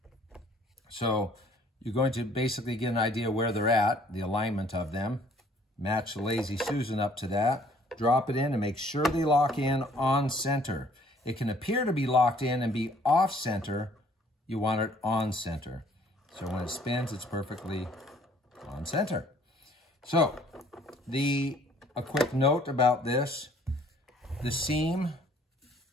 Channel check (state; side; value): normal; both; correlation 0.59